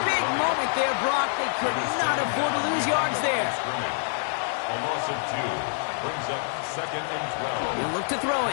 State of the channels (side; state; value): right; silent; 61 dB below the other